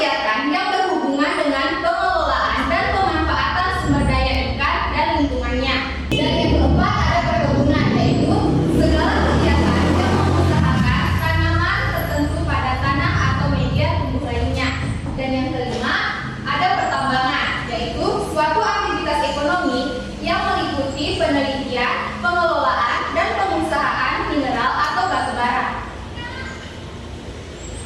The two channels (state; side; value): identical; both; correlation 1.00